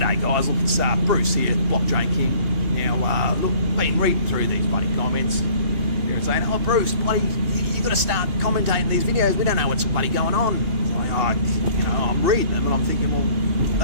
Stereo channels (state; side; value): late; left; 2.8 ms